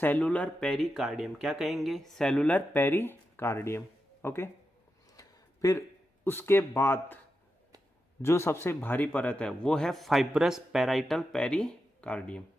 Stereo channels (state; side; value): normal; both; correlation 0.88